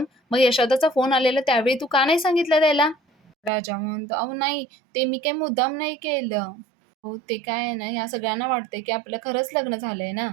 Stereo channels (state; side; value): drops out; left; at 3.5 s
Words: मग यशोदाचा फोन आलेला त्यावेळी तू का नाही सांगितलं त्याला?" राजा म्हणतो, "अहो नाही, ते मी काही मुद्दाम नाही केलं." हो, ते काय आहे ना, ह्या सगळ्यांना वाटतंय, की आपलं खरंच लग्न झालंय ना.